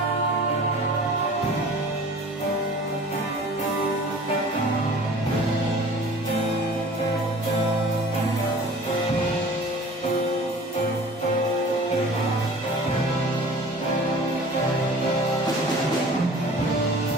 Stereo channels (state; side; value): normal; both; correlation 0.44